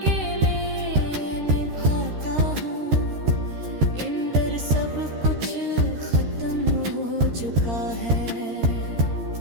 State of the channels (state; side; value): late; left; 13 ms